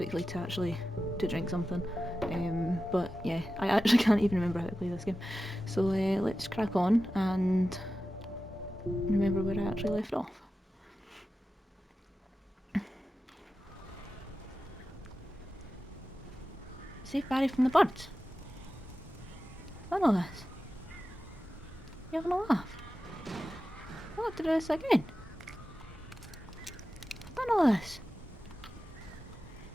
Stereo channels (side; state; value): both; normal; correlation 0.93